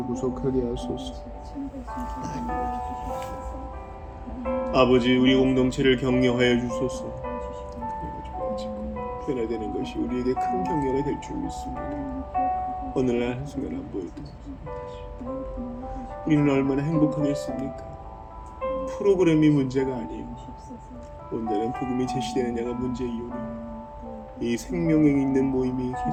구속하게 하소서. 아버지 우리 공동체를 격려하여 주소서. 변화되는 것이 우리에게 큰 격려가 될 줄 믿습니다. 오늘날 한순간 안 보여도 우리는 얼마나 행복하겠습니까? 프로그램이 문제가 아니에요. 온전한 복음이 제시되느냐가 문제이오니 이 생명력 있는 모임이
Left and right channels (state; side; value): identical; both; correlation 1.00